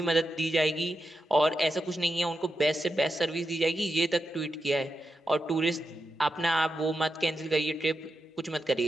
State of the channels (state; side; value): normal; both; correlation 0.87